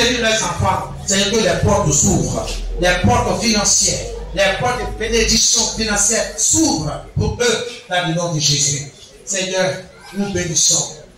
leurs enfants, Seigneur, que les portes s'ouvrent, les portes financières, les portes de bénédiction financière s'ouvrent pour eux dans le nom de Jésus. Seigneur, nous bénissons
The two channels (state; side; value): identical; both; correlation 1.00